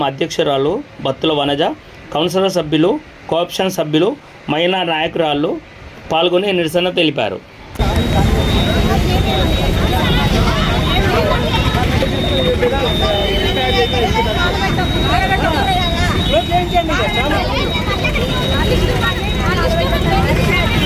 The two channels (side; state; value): both; identical; correlation 1.00